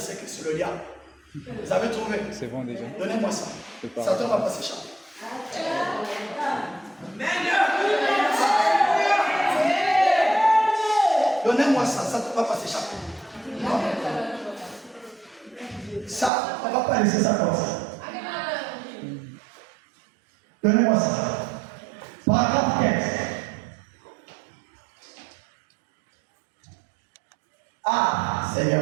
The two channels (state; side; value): drops out; left; at 16.3 s